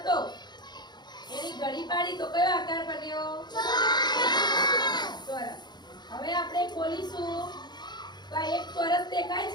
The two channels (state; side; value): late; right; 0.21 ms